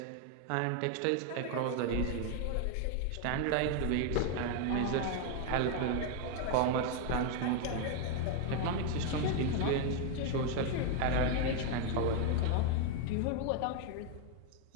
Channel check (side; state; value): both; different; correlation 0.00